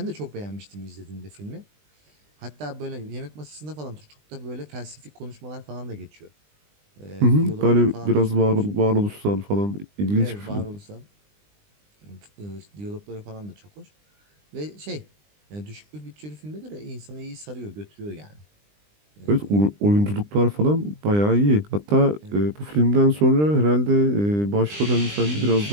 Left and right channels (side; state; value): left; late; 20 ms